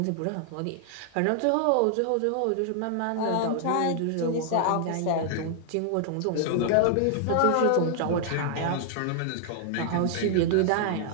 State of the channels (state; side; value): different; both; correlation 0.00